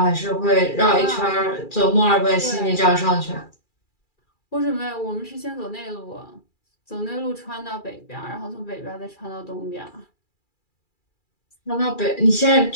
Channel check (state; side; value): late; right; 2.3 ms